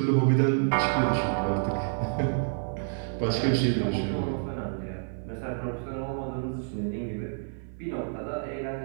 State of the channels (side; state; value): left; silent; 57 dB below the other